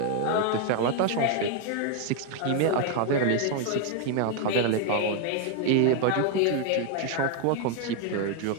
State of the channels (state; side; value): different; both; correlation 0.00